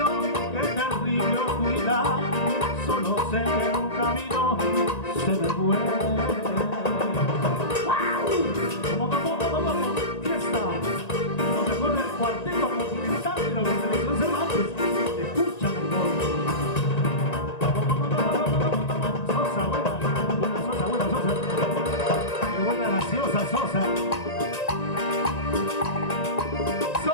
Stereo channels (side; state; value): right; late; 1.9 ms